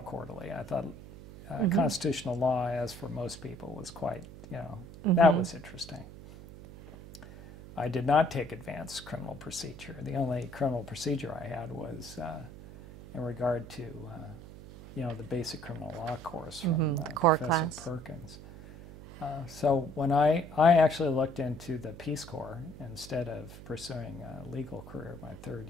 I thought constitutional law, as for most people, was quite, you know, that was interesting. I did not take advanced criminal procedure. The only criminal procedure I had was in regard to, you know, the basic criminal law course from Professor Perkins. So when I actually looked into the Peace Corps instead of pursuing a legal career my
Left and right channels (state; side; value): noise; right; hum, 15 dB below the sound